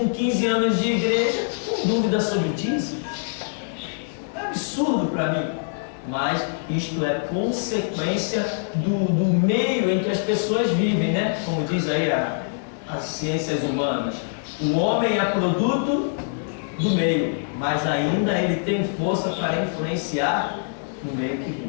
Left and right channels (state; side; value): silent; right; digital silence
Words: 15 anos de igreja com dúvida sobre dízimo. É absurdo para mim. mas isto é consequência do meio em que as pessoas vivem, né? Como diz aí as ciências humanas. O homem é produto do meio, mas ainda ele tem força para influenciar no meio que